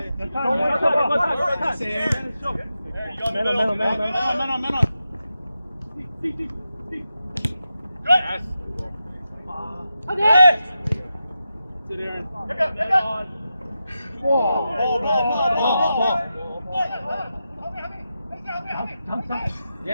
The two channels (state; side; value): inverted; both; correlation -0.89